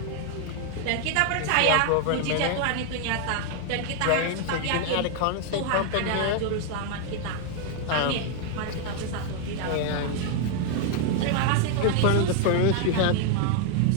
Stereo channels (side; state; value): both; different; correlation 0.00